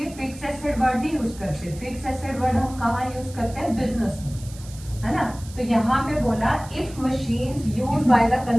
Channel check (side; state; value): right; noise; hiss, 19 dB below the sound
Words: फिक्स एसेट वर्ड नहीं यूज करते। फिक्स एसेट वर्ड हम कहाँ यूज करते हैं? बिजनेस में, है ना। तो यहाँ पे बोला if machines use by the